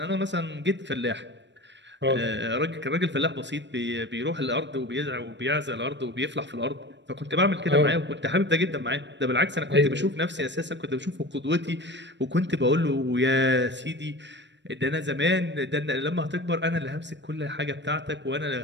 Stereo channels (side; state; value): left; late; 0.52 ms